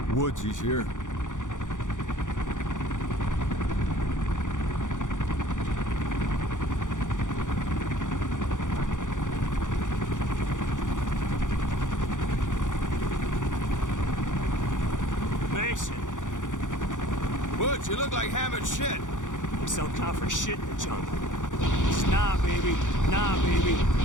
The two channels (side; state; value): right; late; 0.87 ms